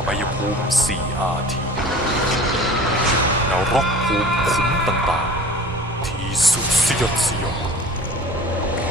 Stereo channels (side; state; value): both; normal; correlation 0.41